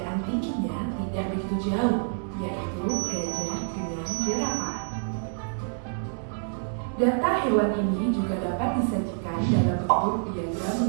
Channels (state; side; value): silent; left; digital silence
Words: tingginya tidak begitu jauh, yaitu gajah dengan jerapah. Data hewan ini juga dapat disajikan dalam bentuk diagram